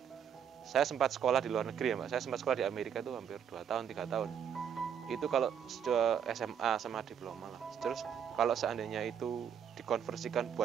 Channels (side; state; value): left; quieter; 8.2 dB